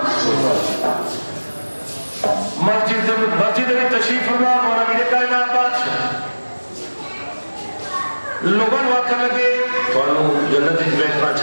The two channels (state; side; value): inverted; both; correlation -1.00